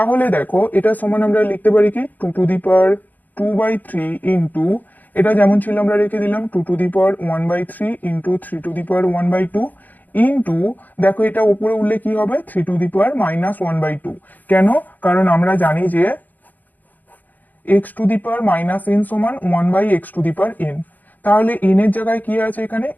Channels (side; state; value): right; late; 0.083 ms